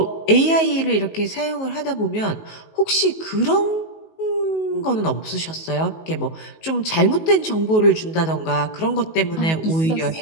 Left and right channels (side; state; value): right; late; 19 ms